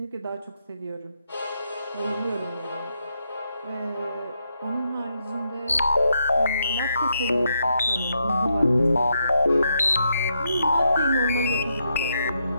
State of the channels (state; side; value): inverted; both; correlation -0.80